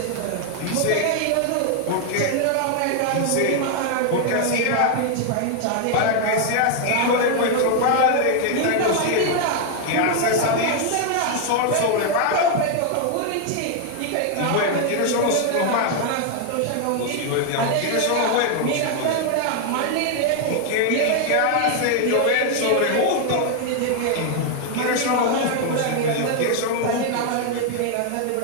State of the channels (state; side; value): different; both; correlation 0.00